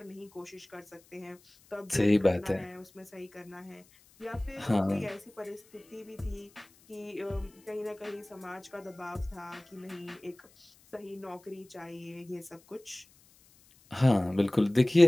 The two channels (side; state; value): left; noise; hiss, 28 dB below the sound